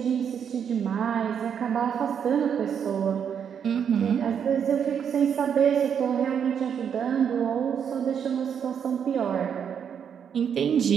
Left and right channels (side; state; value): left; quieter; 7.8 dB